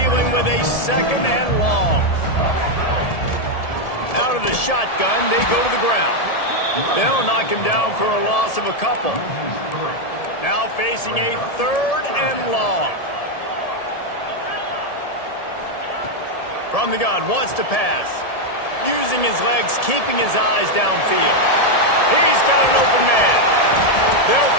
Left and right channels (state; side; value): late; right; 1.7 ms